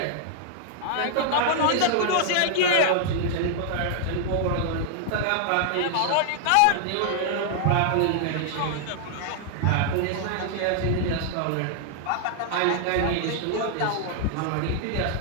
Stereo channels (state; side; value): different; both; correlation -0.01